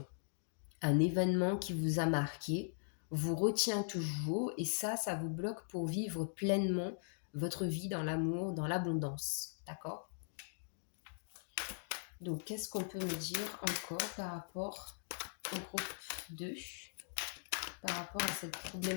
un événement qui vous a marqué, vous retient toujours et ça vous bloque pour vivre pleinement votre vie dans l'amour, dans l'abondance. D'accord? Donc, qu'est-ce qu'on peut me dire encore par rapport au groupe 2, par rapport à cette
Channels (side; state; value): right; silent; digital silence